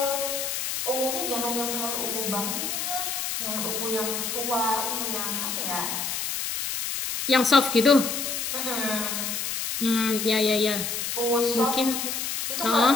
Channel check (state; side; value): noise; left; hiss, 2 dB below the sound